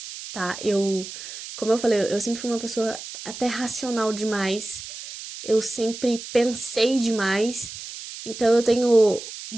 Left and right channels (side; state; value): right; noise; hiss, 11 dB below the sound